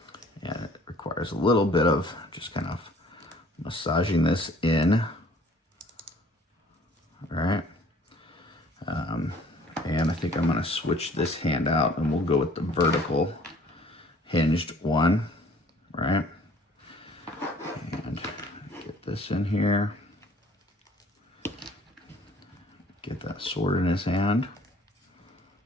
And it requires a little bit of just kind of massaging this in. All right. And I think I'm going to switch this hand out and we'll go with the vertical hinged one. Right. And get this in here. Get that sword in his hand.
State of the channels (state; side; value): normal; both; correlation 0.55